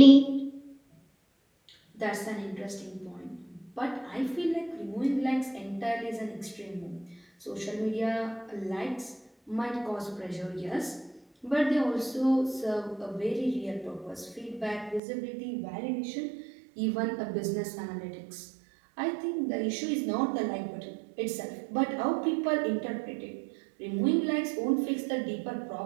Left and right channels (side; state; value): left; drops out; at 15.0 s